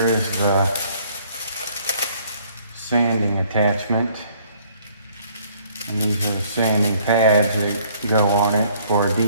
the sanding attachment. And these are the sanding pads that go on it for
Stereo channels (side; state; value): both; inverted; correlation -0.61